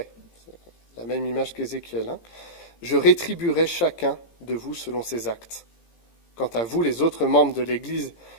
La même image qu'Ézéchiel. Je rétribuerai chacun de vous selon ses actes. Quant à vous, les autres membres de l'église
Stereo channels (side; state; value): right; late; 17 ms